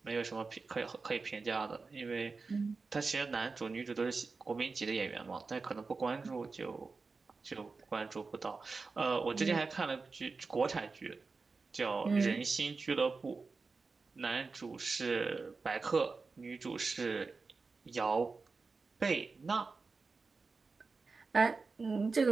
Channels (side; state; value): left; quieter; 4.3 dB